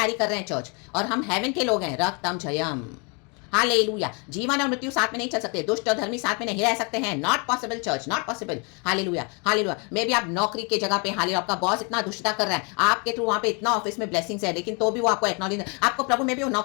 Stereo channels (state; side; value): quieter; right; 33.9 dB